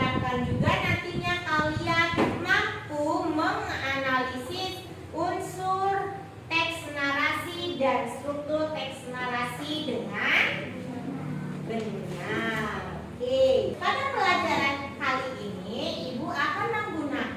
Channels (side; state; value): both; identical; correlation 1.00